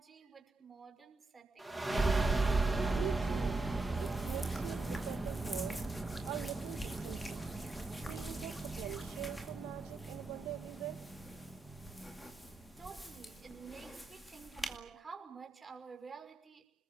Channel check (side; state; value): left; quieter; 3.1 dB